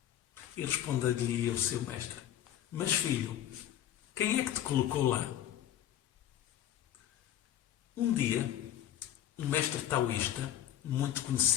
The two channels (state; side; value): quieter; right; 11.4 dB